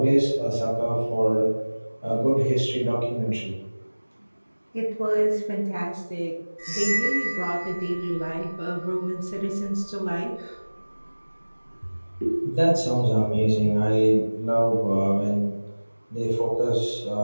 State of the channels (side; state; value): both; inverted; correlation -1.00